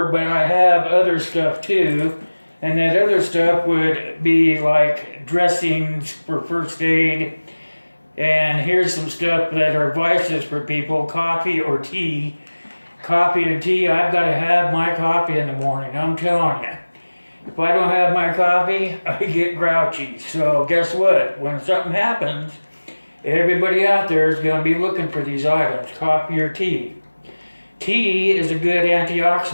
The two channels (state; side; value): inverted; both; correlation -1.00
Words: but I have other stuff too. And that other stuff would be like dressings for first aid. And here's some stuff that are vices for people, coffee or tea. Coffee and tea, I've got to have my coffee in the morning, I'm telling you. If I don't have my coffee, I get grouchy. So guess what? When something happens, everybody out there is going to be looking for these items, coffee or tea. Tea is a good